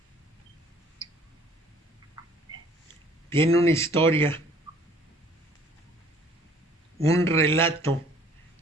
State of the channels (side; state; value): both; normal; correlation 0.56